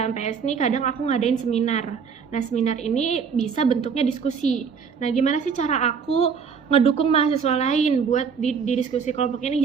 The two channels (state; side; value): quieter; left; 6.2 dB